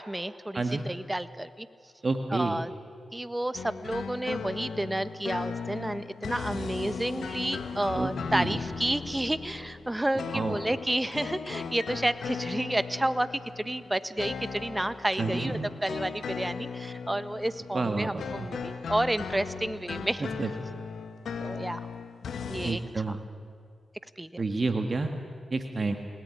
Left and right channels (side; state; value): both; normal; correlation 0.94